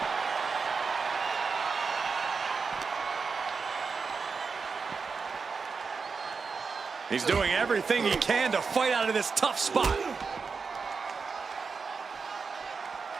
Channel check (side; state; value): left; quieter; 5.0 dB